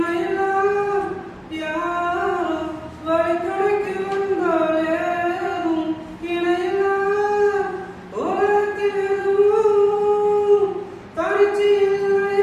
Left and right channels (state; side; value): identical; both; correlation 1.00